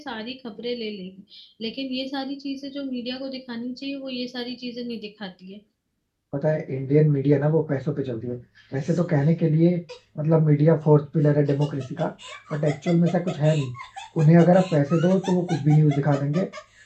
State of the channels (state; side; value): identical; both; correlation 1.00